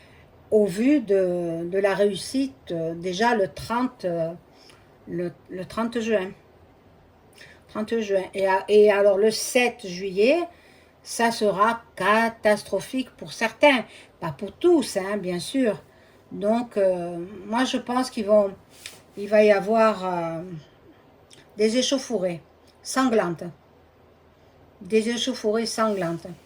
au vu de la réussite déjà le 30 juin. 30 juin. Et alors le 7 juillet, ça sera catastrophique pour certains, pas pour tous, hein, bien sûr. Donc, moi je pense il va y avoir des échauffourées sanglantes. Des échauffourées sanglantes.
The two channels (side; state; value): both; identical; correlation 1.00